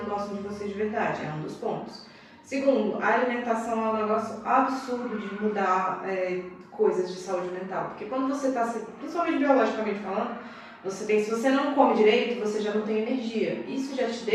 que gostam de você de verdade. É um dos pontos. Segundo, a alimentação é um negócio absurdo de mudar coisas de saúde mental. Porque quando você está, principalmente biologicamente falando, se você não come direito, você já não tem energia. Isso já te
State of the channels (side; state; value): both; identical; correlation 1.00